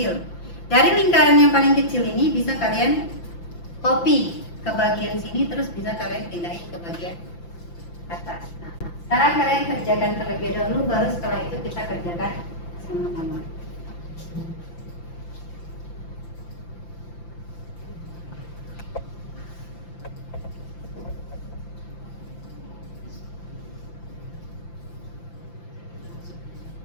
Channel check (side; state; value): right; late; 5.9 ms